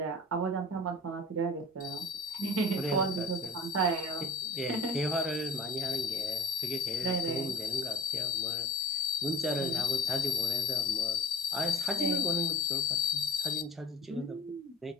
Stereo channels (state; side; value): normal; both; correlation 0.46